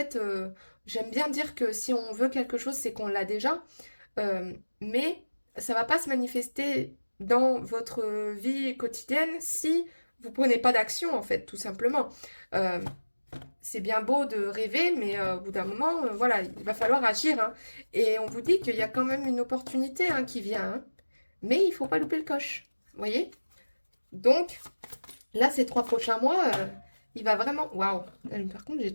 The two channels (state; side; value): inverted; both; correlation -1.00